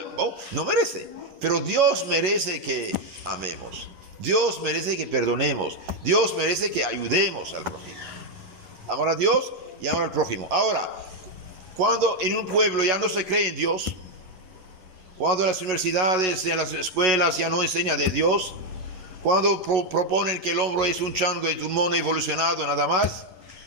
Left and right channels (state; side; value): late; left; 11 ms